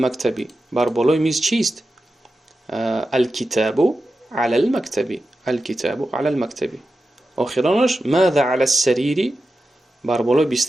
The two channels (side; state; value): both; normal; correlation 0.92